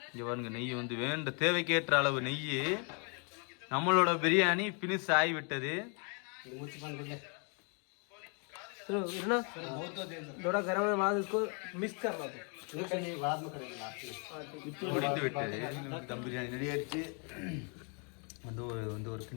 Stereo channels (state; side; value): quieter; right; 37.9 dB